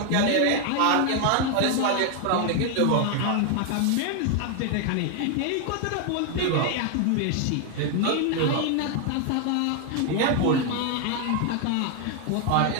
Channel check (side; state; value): both; different; correlation 0.01